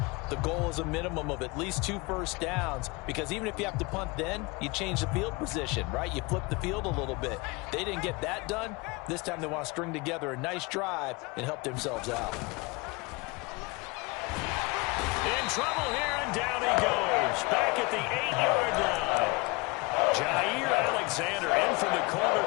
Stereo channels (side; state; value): right; quieter; 25.9 dB